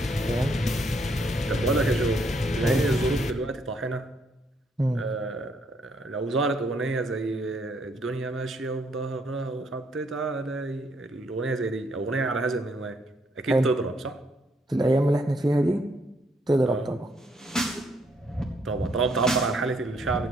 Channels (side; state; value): both; normal; correlation 0.71